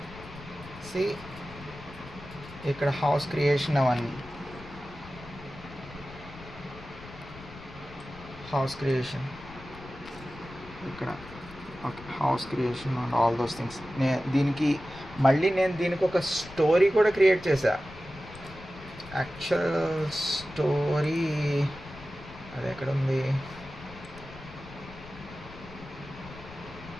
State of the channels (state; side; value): noise; left; rumble, 16 dB below the sound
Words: C ఇక్కడ house creation, అవన్నీ house creation ఇక్కడ. Okay, house creation and all those things. దీనికి దీనికి ఒక స్టోరీ కూడా క్రియేట్ చేశా. యాక్చువల్ స్టోరీ అది ఎక్కడ ఉంది?